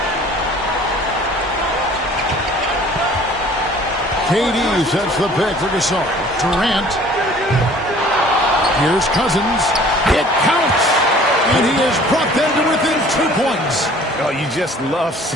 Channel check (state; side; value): normal; both; correlation 0.51